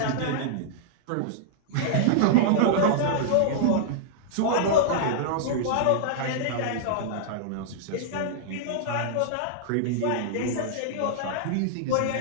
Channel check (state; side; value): different; both; correlation -0.02